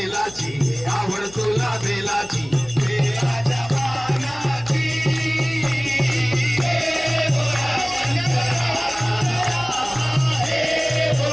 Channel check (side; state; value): left; noise; hum, 20 dB below the sound